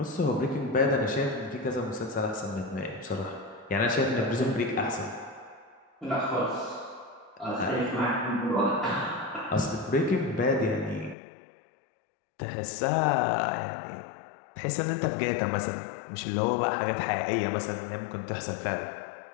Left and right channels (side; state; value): right; drops out; at 11.2 s